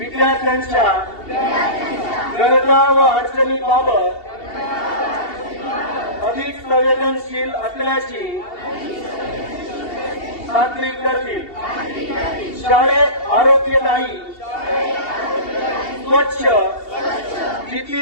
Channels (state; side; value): late; right; 2.7 ms